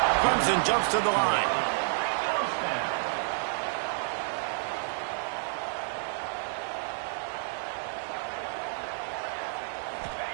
Clemson jumps to the line.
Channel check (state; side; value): silent; left; digital silence